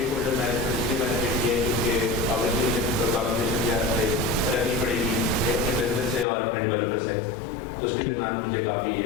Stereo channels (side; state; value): right; drops out; at 6.2 s